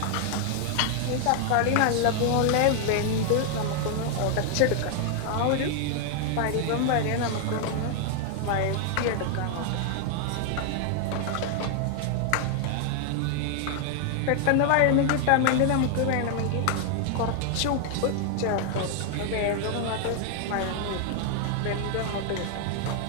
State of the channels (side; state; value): both; different; correlation 0.00